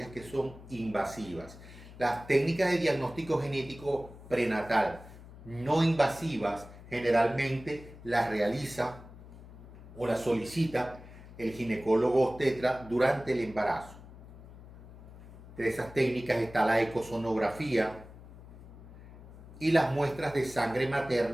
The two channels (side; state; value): left; noise; hum, 17 dB below the sound